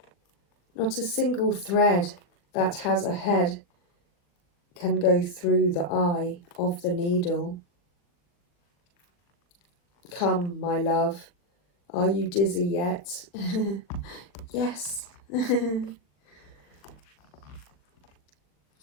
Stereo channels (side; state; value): right; late; 40 ms